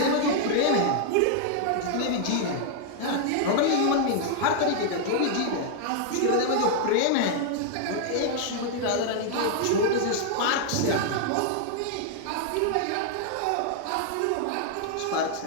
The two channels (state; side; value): different; both; correlation -0.01